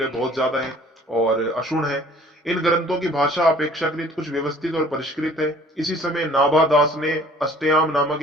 बहुत ज्यादा है और अक्षुण्ण है। इन ग्रंथों की भाषा अपेक्षाकृत कुछ व्यवस्थित और परिष्कृत है। इसी समय नाभा दास ने अष्टयाम नामक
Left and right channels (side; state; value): both; normal; correlation 0.53